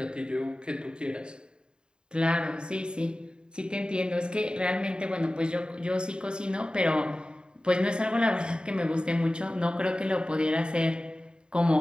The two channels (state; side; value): late; left; 0.049 ms